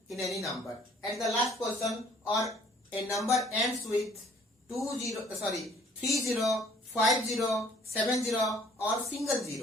in any number at the last position, or a number ends with 30, 50, 70 or single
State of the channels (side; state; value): both; normal; correlation 0.57